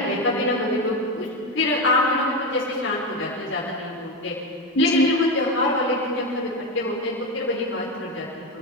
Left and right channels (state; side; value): normal; both; correlation 0.14